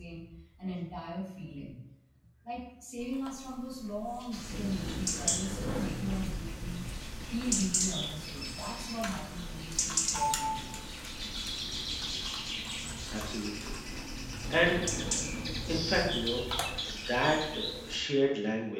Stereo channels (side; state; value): both; identical; correlation 1.00